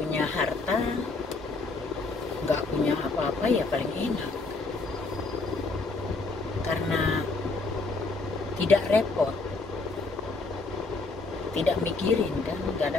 harta, nggak punya apa-apa, ya paling enak, karena tidak repot, tidak mikirin kan, nggak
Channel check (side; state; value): right; quieter; 3.7 dB